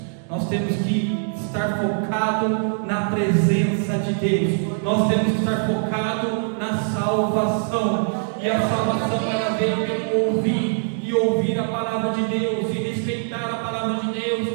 Nós temos que estar focado na presença de Deus. Nós temos que estar focado na salvação. E a salvação ela vem pelo ouvir, e ouvir a palavra de Deus, e respeitar a palavra de Deus,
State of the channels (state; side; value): silent; left; digital silence